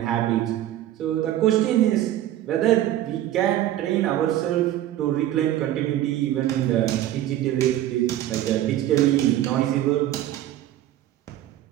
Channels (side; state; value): left; quieter; 13.2 dB